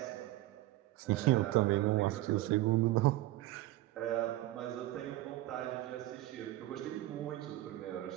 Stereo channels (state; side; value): quieter; left; 16.0 dB